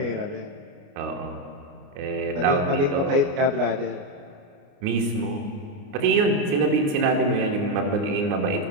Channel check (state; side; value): late; left; 29 ms